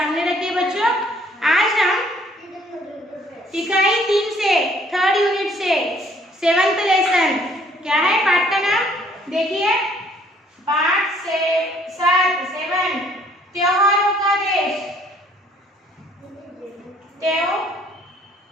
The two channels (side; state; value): both; normal; correlation 0.62